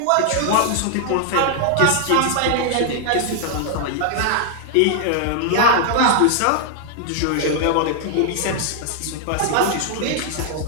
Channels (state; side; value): different; both; correlation 0.00